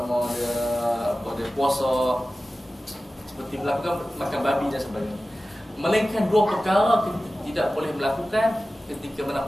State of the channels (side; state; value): both; normal; correlation 0.95